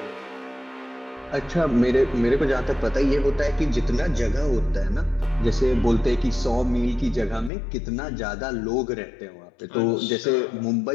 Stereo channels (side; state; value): right; drops out; at 7.5 s